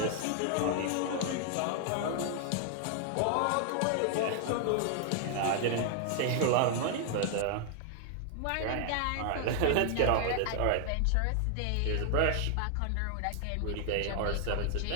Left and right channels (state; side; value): different; both; correlation 0.00